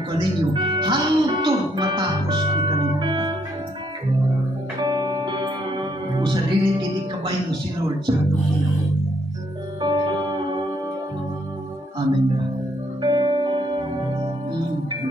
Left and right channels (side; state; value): both; normal; correlation 0.71